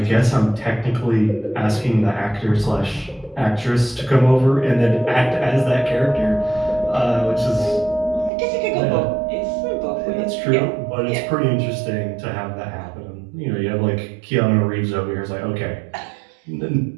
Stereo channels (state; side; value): drops out; left; at 8.3 s